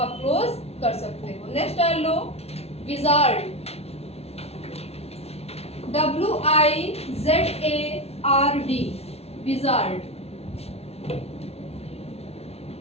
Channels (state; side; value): late; right; 0.30 ms